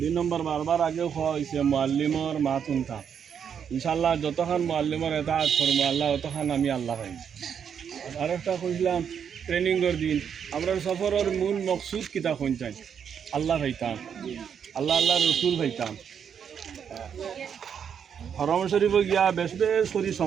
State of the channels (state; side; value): quieter; left; 7.7 dB